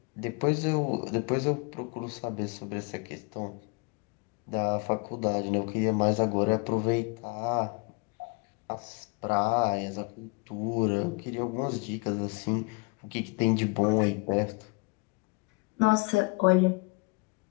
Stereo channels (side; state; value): right; quieter; 30.0 dB